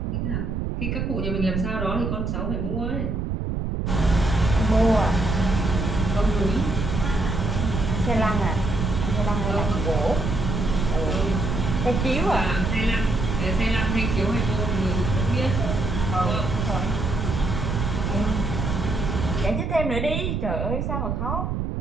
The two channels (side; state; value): right; noise; rumble, 1 dB below the sound